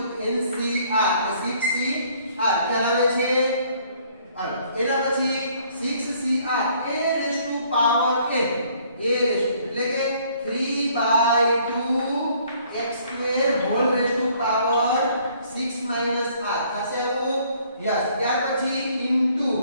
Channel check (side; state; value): both; inverted; correlation -0.62